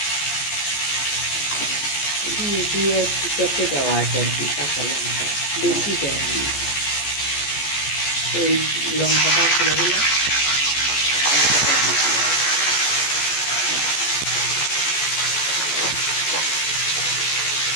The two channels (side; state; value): right; late; 14 ms